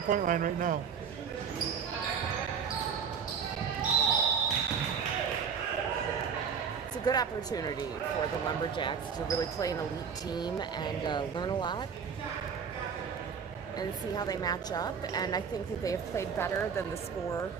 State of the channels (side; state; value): left; quieter; 6.6 dB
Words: line right now. It's a good opportunity for the Lumberjacks to really play an elite team and learn a lot and see how they match up. And I think that they have played better than the score